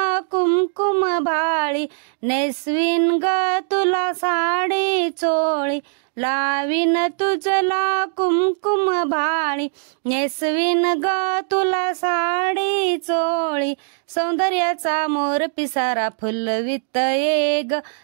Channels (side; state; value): left; silent; digital silence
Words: कुमकुम भाळी, नेसवीन ग तुला साडी चोळी, लावीन तुझला कुमकुम भाळी, नेसवीन ग तुला साडी चोळी, सौंदर्याचा मोर पिसारा फुलवित ये ग,